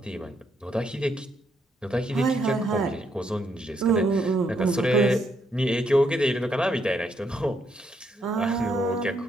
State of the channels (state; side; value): normal; both; correlation 0.75